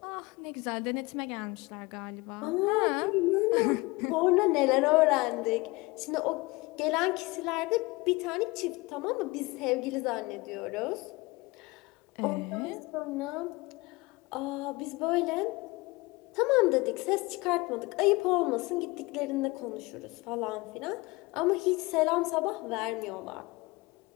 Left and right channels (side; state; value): right; quieter; 23.4 dB